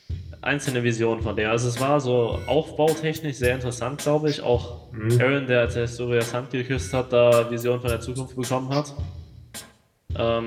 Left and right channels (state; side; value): identical; both; correlation 1.00